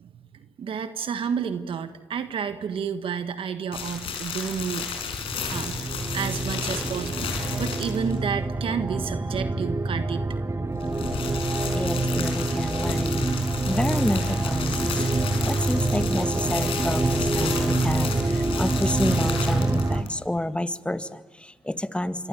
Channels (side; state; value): both; normal; correlation 0.77